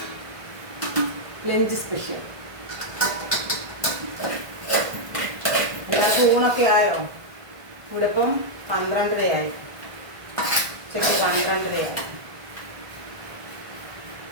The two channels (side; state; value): left; late; 1.5 ms